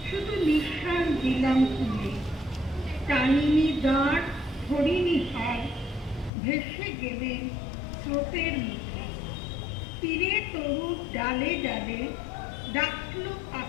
শুধু নিঃশ্বাস দিলাম তুলে। টানিনি দাঁড়, ধরিনি হার, ভেসে গেলেন স্রোতের মুখে। তীরে তরুর ডালে ডালে ডাকল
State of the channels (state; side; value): drops out; right; at 6.3 s